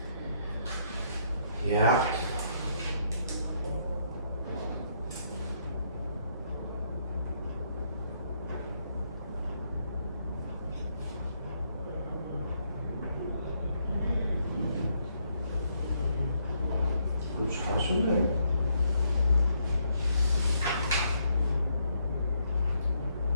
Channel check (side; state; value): both; inverted; correlation -0.73